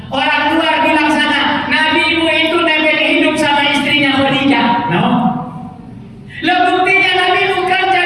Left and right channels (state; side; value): identical; both; correlation 1.00